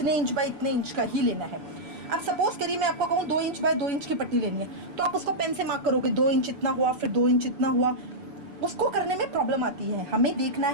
इंच बाय इतने इंच का ही लेना है। अब सपोज करिए मैं आपको कहूँ 2 इंच बाय 2 इंच की पट्टी लेनी है, तो आप उसको पेन से मार्क करोगे 2 इंच इतना हुआ, फिर 2 इंच इतना हुआ। उसको करने में प्रॉब्लम आती है। हमें देखना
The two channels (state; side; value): late; left; 6.9 ms